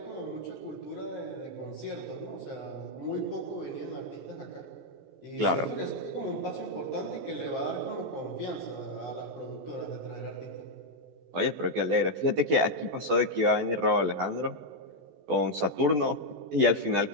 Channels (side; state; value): left; late; 13 ms